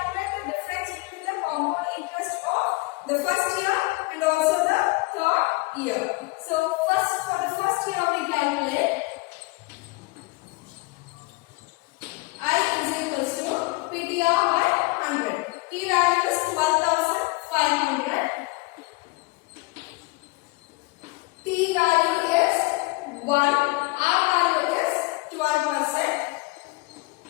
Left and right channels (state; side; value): quieter; right; 24.2 dB